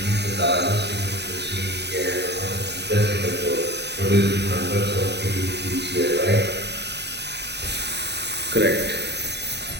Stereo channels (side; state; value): left; late; 0.49 ms